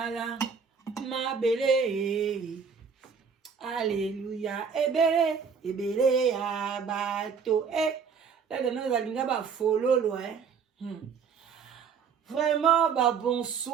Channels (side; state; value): left; quieter; 6.1 dB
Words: mabele alléluia ebele ya bato là nous allons ba fololo vraiment ba